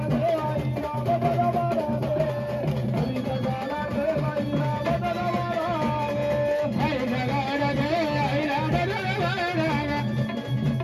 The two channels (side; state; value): both; identical; correlation 1.00